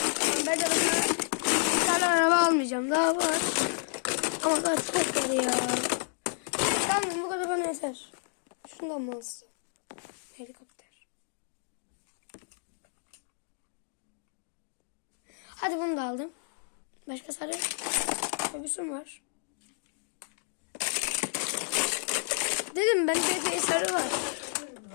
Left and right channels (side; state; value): right; silent; 57 dB below the other